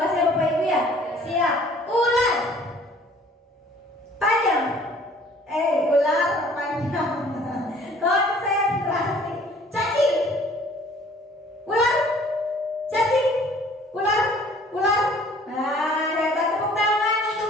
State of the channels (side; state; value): both; normal; correlation 0.54